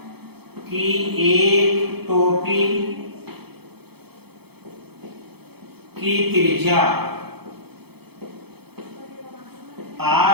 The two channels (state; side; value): late; left; 0.97 ms